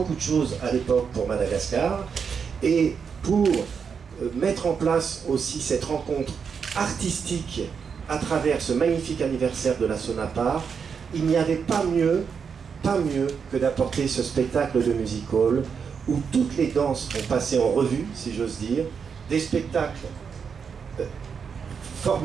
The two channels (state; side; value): quieter; left; 6.3 dB